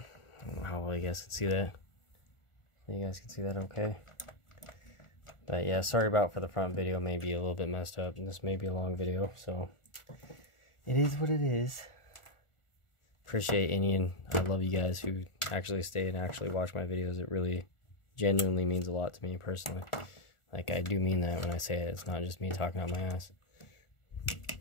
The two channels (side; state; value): right; late; 1.4 ms